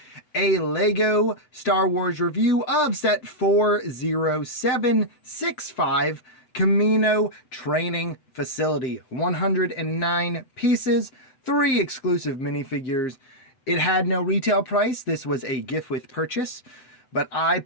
a LEGO Star Wars review of set 40765 Kamino Training Facility. 109 pieces, 3 exclusive minifigures. It had no retail price. This was a gift with purchase, but I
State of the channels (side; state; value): right; late; 8.0 ms